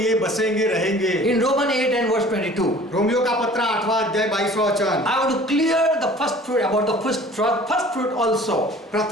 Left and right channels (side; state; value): both; normal; correlation 0.48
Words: बसेंगे रहेंगे। In Romans 8 and verse 22, Romeo का पत्र 8वां अध्याय 22वां वचन। I want to clear the first fruit about the first fruit also.